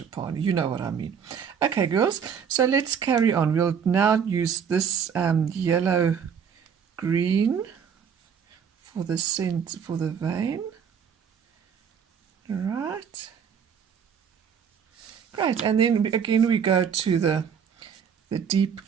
You know what I mean. Okay, girls, so let's carry on. We'll now use this yellow green for the scent, for the vein. Right, great, and then again we go to the deep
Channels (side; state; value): left; quieter; 7.3 dB